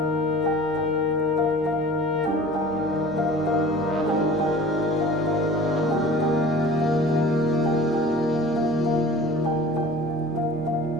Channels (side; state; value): right; noise; hum, 20 dB below the sound